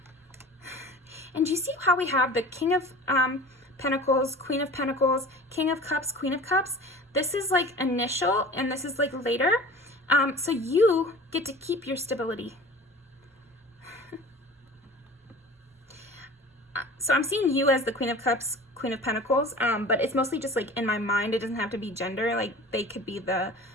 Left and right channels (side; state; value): both; normal; correlation 0.41